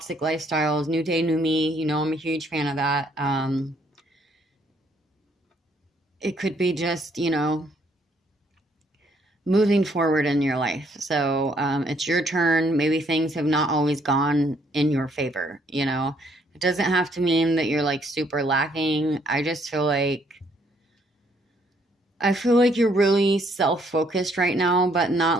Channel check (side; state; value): both; normal; correlation 0.68